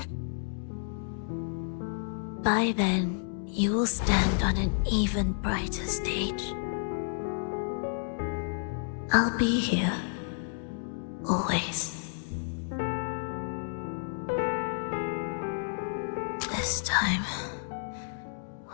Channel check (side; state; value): right; silent; digital silence